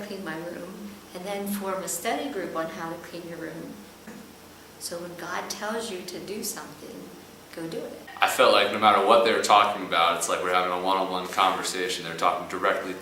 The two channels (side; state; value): both; identical; correlation 1.00